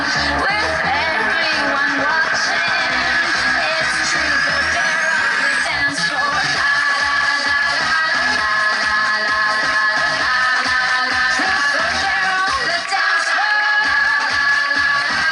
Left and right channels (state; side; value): identical; both; correlation 1.00